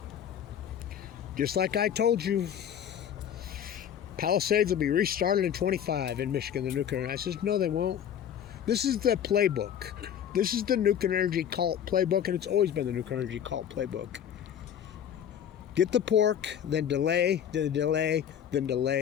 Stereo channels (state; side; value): quieter; right; 9.3 dB